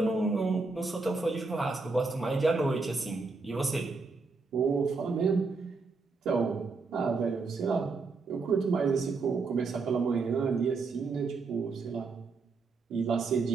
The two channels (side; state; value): left; quieter; 4.2 dB